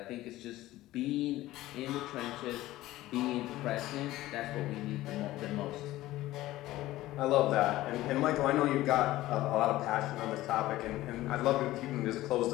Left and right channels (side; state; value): right; quieter; 16.3 dB